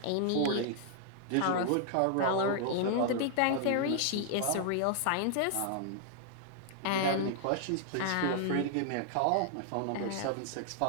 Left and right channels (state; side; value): different; both; correlation -0.01